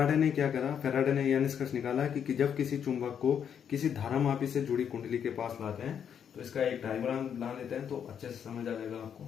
ने क्या करा, फैराडे ने यह निष्कर्ष निकाला कि जब किसी चुंबक को किसी धारामापी से जुड़ी कुंडली के पास लाते हैं, तो इसका एक डायग्राम बना लेते हैं तो अच्छे से समझ आ जाएगा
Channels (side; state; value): right; quieter; 8.2 dB